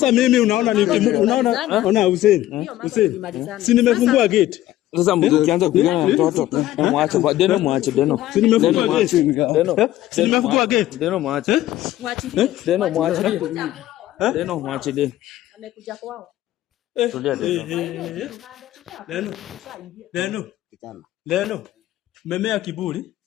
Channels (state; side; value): quieter; right; 14.4 dB